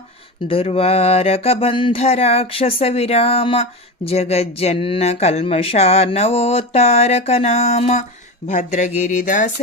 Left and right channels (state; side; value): normal; both; correlation 0.23